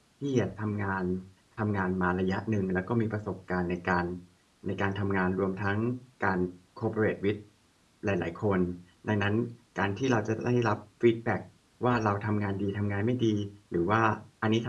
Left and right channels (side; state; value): both; identical; correlation 1.00